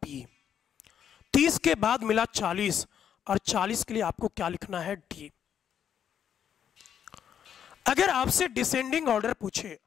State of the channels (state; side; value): quieter; right; 8.9 dB